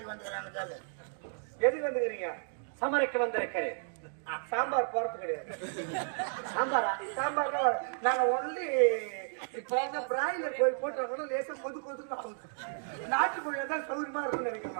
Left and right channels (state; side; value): silent; left; digital silence